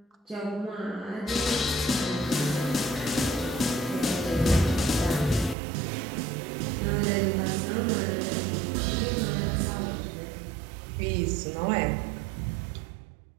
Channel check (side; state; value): left; drops out; at 5.6 s